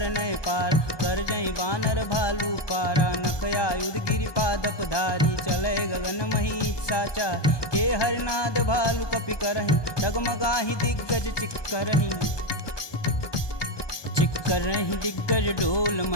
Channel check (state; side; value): late; right; 1.2 ms